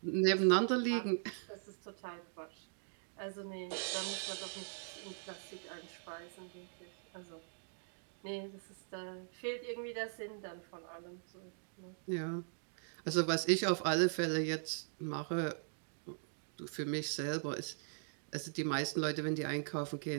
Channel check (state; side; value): silent; left; digital silence